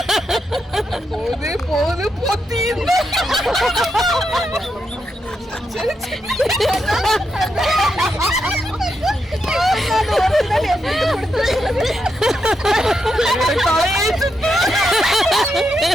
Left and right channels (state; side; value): normal; both; correlation 0.83